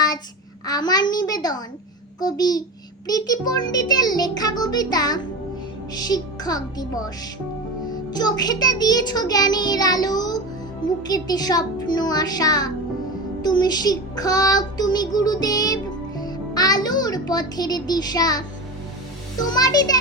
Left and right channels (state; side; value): normal; both; correlation 0.25